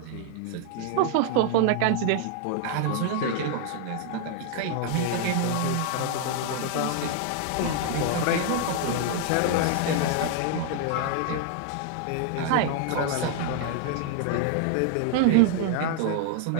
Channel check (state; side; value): different; both; correlation 0.00